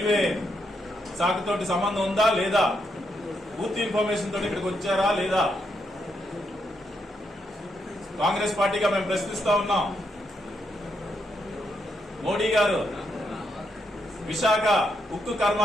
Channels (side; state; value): both; normal; correlation 0.80